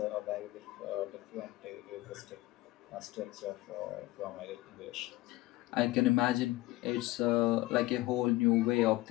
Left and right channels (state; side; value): quieter; right; 18.9 dB